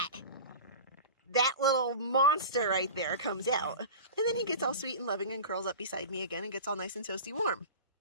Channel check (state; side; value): inverted; both; correlation -0.33